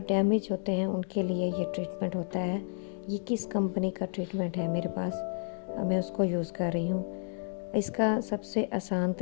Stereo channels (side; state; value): right; silent; digital silence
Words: डैमेज होते हैं उनके लिए ये ट्रीटमेंट होता है। ये किस कंपनी का ट्रीटमेंट है मेरे पास, मैं उसको यूज़ कर रही हूँ। इसका सबसे आसान